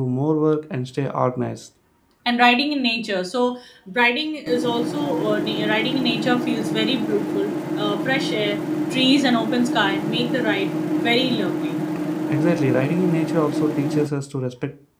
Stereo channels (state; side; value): identical; both; correlation 1.00